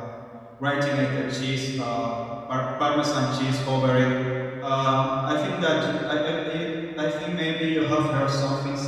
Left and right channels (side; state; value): both; identical; correlation 1.00